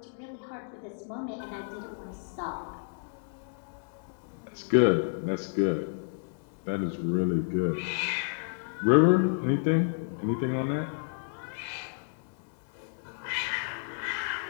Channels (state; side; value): silent; right; digital silence